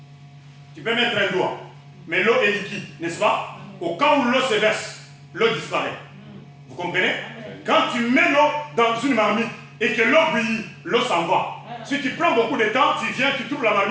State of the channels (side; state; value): both; identical; correlation 1.00